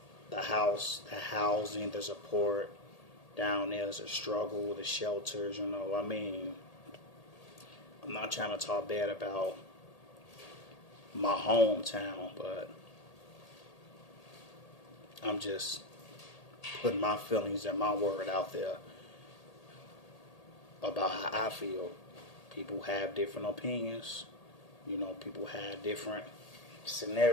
The housing, the support down there is a struggle. The shelters, I'm not trying to talk bad about my hometown, but I'm just putting my feelings and my word out there about how I feel. People have different opinions. People have different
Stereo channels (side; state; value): right; late; 1.8 ms